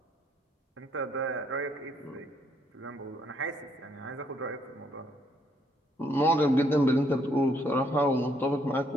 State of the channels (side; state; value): both; normal; correlation 0.70